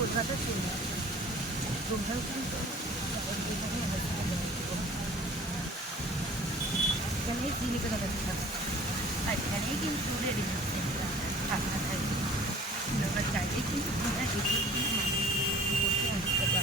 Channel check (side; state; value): both; normal; correlation 0.48